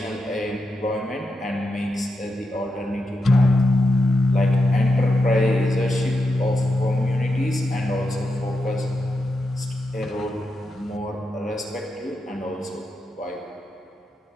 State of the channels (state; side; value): normal; both; correlation 0.87